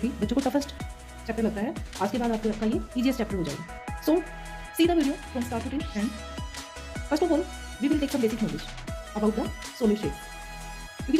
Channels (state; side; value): identical; both; correlation 1.00